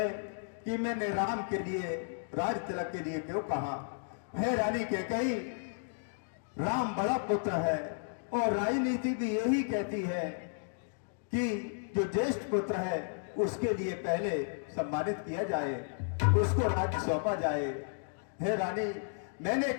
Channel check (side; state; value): right; silent; digital silence